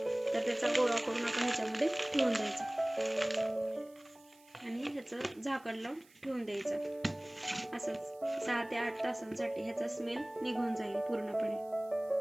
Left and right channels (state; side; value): noise; right; hiss, 28 dB below the sound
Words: तर त्याचा गोळा करून आपण ह्याच्यामध्ये ठेवून द्यायचा आणि ह्याचं झाकण लावून ठेवून द्यायचं. असंच 6 ते 8 तासांसाठी ह्याचा स्मेल निघून जाईल पूर्णपणे.